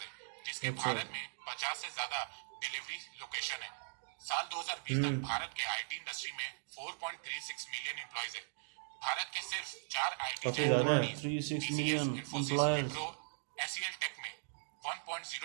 जिसके भारत में 50 से ज्यादा डिलीवरी लोकेशन है। साल 2020 तक भारत के आईटी इंडस्ट्री में 4.36 मिलियन एम्प्लॉयज है। भारत के सिर्फ 4 IT giant companies 36 TCS, million Infosys, employees। Wipro, SEL tech में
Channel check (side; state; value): left; silent; digital silence